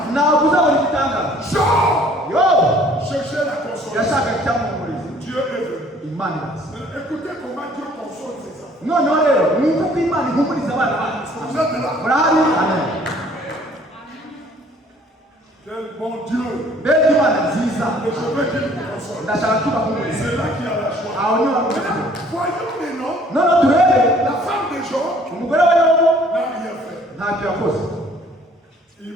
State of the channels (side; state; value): both; normal; correlation 0.57